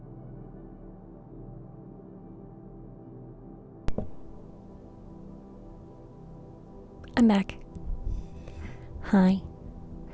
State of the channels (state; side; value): identical; both; correlation 1.00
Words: I'm back. Hi.